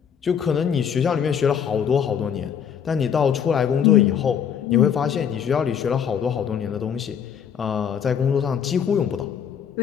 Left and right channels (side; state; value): right; quieter; 7.9 dB